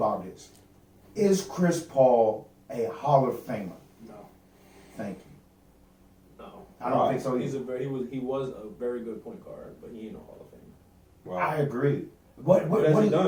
this. Is Chris Paul a Hall of Famer? No. Thank you. No. I don't think so He's either. he was a very good point guard, but he ain't no Hall of Famer. Wow. I agree. What has he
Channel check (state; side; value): identical; both; correlation 1.00